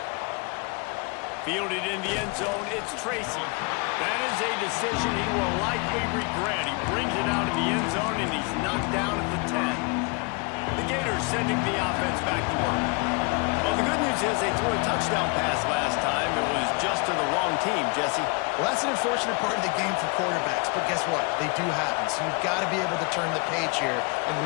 Fielded in the end zone, it's Tracy. That is a decision he will likely regret. He brings it out of the end zone, and he's knocked down at the 10. The Gators sending the offense back to work. Well, the good news is they threw a touchdown pass last time. It was just to the wrong team, Jesse. Well, that's an unfortunate part of the game for quarterbacks, but guess what? They do happen, so you've got to be able to turn the page here and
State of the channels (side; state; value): right; quieter; 30.7 dB